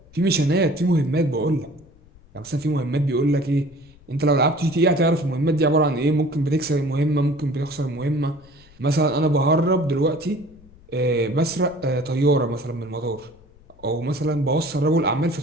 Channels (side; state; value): left; noise; rumble, 26 dB below the sound